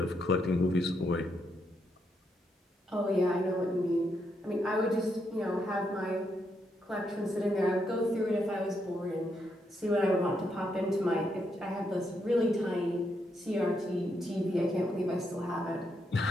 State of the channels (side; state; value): both; normal; correlation 0.79